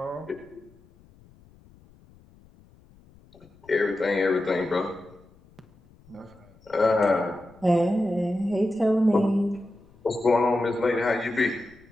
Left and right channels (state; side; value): noise; left; rumble, 27 dB below the sound